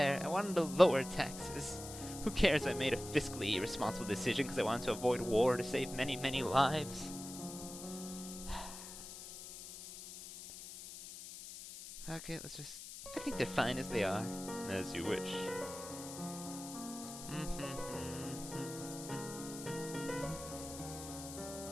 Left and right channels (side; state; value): left; noise; hiss, 11 dB below the sound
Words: I wanted to lower taxes. Who cares if I made a fiscally irresponsible decision because I wanted to avoid war to save many, many lives? Okay, I think they're fine as they are. As you wish.